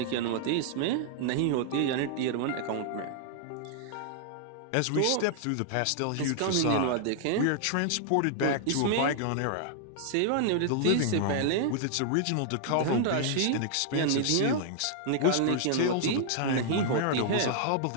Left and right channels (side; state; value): both; different; correlation -0.01